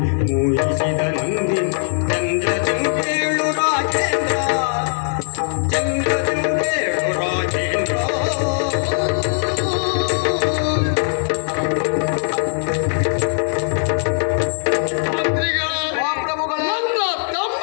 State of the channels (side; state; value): right; silent; 57 dB below the other